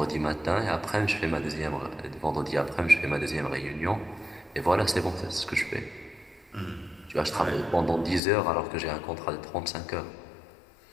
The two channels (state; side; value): drops out; right; at 8.2 s